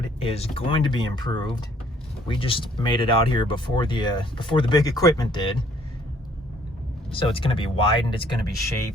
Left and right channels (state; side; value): normal; both; correlation 0.62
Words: is going to be improved. We just made it out here before the big equipment did. So it's going to be widened, it's going to be